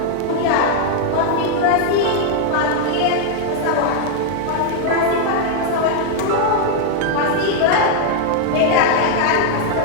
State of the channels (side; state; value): both; different; correlation 0.00